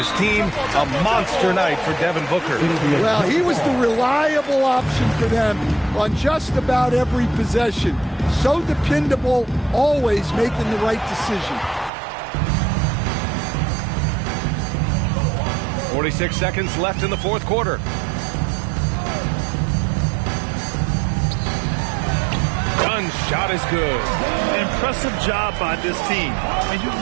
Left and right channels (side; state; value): left; drops out; at 11.9 s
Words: team. A monster night for Devin Booker. Well, he was the reliable option for them on just about every possession. So dependable, always making the right decision. 46 seconds left in the fourth quarter. Dunn's shot is good. Impressive job by this team. And you